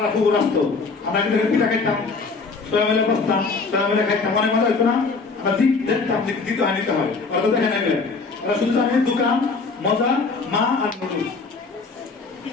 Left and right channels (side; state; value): right; quieter; 4.3 dB